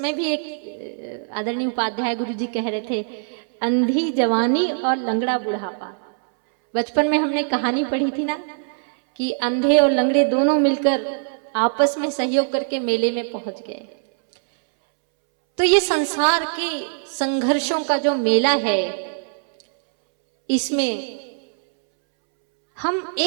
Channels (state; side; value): silent; left; 64 dB below the other